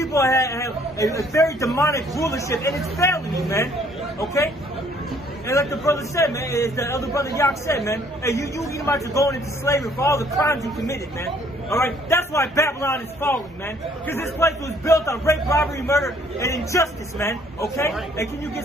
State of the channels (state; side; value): normal; both; correlation 0.62